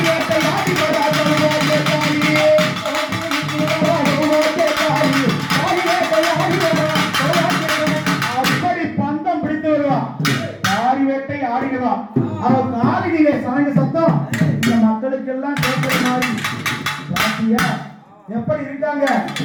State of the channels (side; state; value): both; identical; correlation 1.00